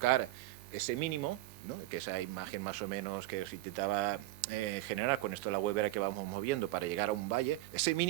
ese mínimo, ¿no? Que esa imagen más o menos que os intentaba generar con esto de la huevera que vamos moviendo para llegar a un valle. Ese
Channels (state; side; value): quieter; left; 17.4 dB